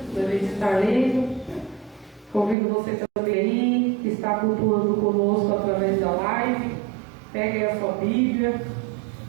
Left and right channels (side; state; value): left; drops out; at 2.6 s